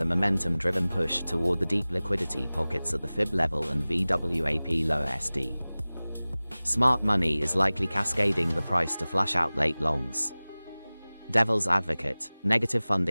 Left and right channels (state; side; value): inverted; both; correlation -0.99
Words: a momentum-driven push toward the deep liquidity pockets at the fib level and VWAP lower SD. Smart money is likely cascading the price to flush out late longs. Devil's advocate: negative